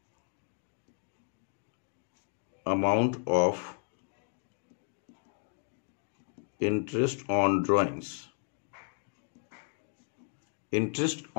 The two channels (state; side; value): silent; right; 55 dB below the other